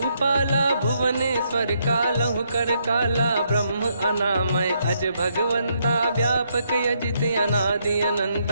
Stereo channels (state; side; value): inverted; both; correlation -0.75